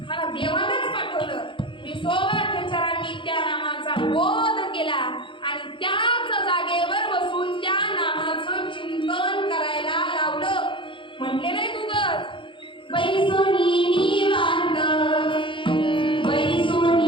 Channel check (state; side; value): late; right; 0.24 ms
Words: मला देवानंच पाठवलं. विसोबा खेचरांनी त्या नामाचा बोध केला आणि त्याच जागेवर बसून त्या नामाचं चिंतन करायला लावलं. म्हटले नाही तुगच बैसोनी निवांत